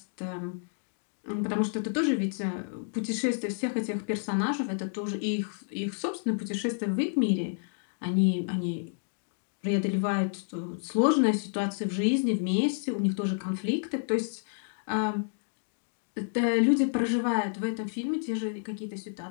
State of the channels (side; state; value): right; silent; digital silence